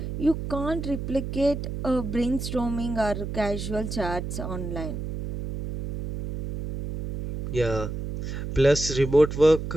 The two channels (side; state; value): right; noise; hum, 6 dB below the sound